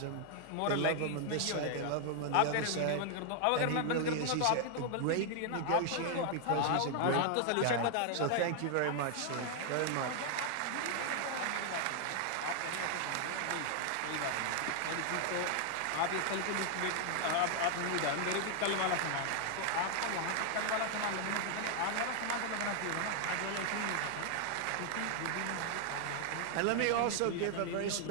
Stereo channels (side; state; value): both; different; correlation 0.00